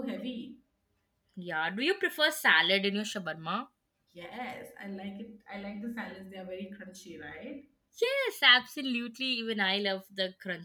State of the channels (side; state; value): both; identical; correlation 1.00